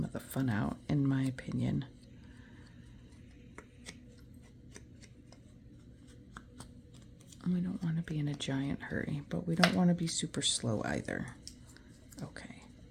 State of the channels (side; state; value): both; identical; correlation 1.00